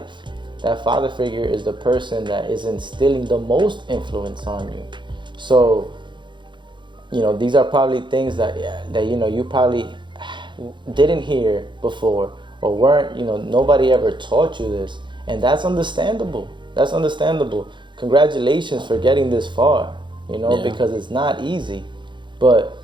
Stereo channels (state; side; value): late; left; 0.23 ms